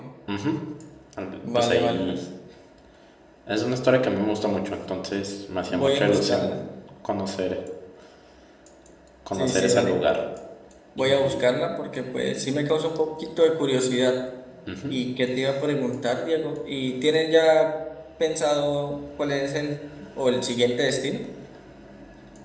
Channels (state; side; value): identical; both; correlation 1.00